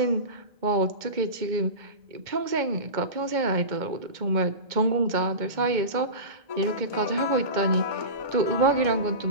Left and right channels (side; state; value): left; late; 2.1 ms